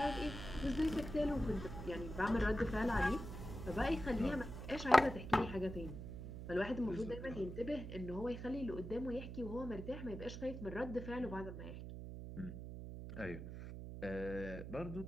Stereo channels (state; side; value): noise; right; hum, 8 dB below the sound